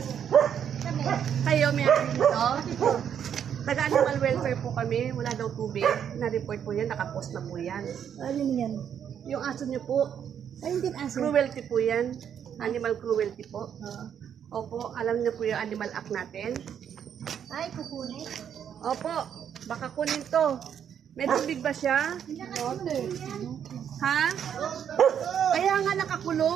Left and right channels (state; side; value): quieter; left; 8.6 dB